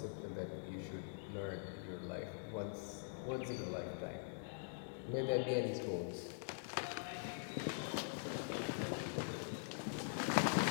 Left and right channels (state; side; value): silent; right; digital silence